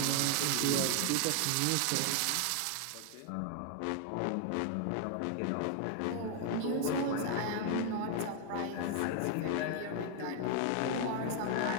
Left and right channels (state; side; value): different; both; correlation 0.00